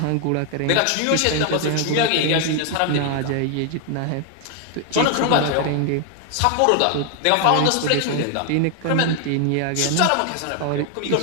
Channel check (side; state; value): both; different; correlation 0.00